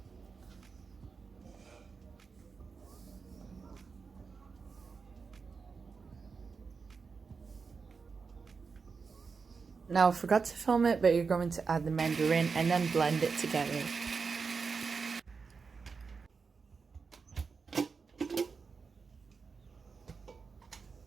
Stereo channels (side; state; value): left; quieter; 5.1 dB